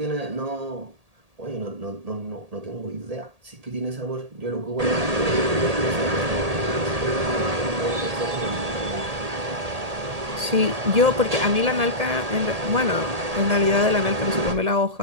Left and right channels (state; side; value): late; left; 1.8 ms